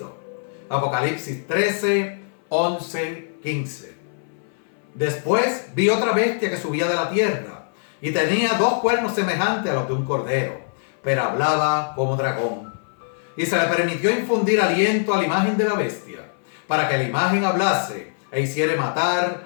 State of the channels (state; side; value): silent; right; 59 dB below the other